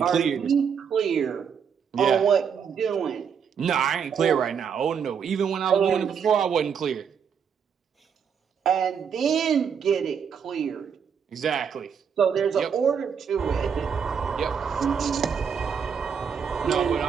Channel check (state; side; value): quieter; left; 7.0 dB